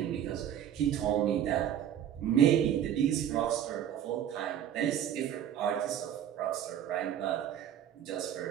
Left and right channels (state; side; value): quieter; left; 10.2 dB